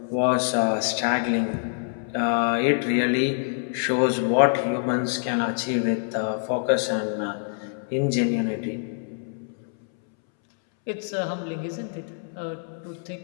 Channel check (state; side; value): silent; right; 61 dB below the other